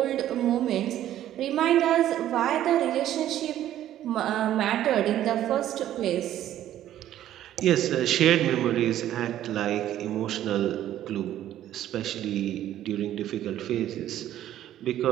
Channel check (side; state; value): left; quieter; 12.3 dB